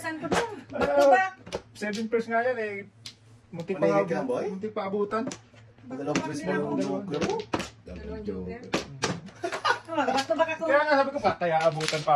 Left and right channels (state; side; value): identical; both; correlation 1.00